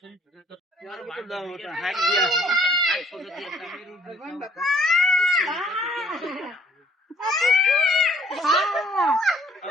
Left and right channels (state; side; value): normal; both; correlation 0.61